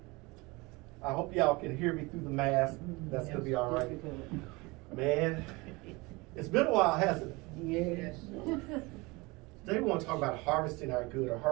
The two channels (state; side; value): quieter; left; 24.4 dB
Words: I hope y'all can hear me through the mask. That's going to be all right. Man, it's been a while, hasn't it? Yes. Today we want to talk about harvesting our good or